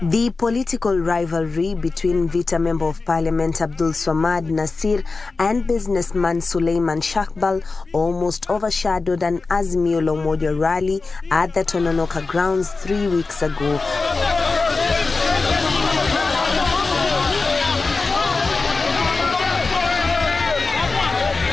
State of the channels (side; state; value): right; quieter; 3.9 dB